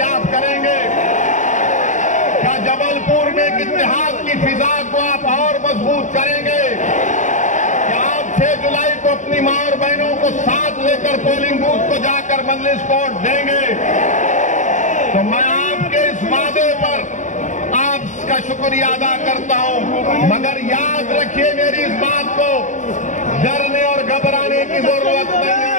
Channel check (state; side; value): late; right; 0.36 ms